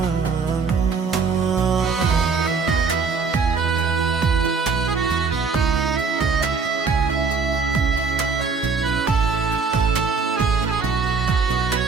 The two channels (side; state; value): left; quieter; 5.0 dB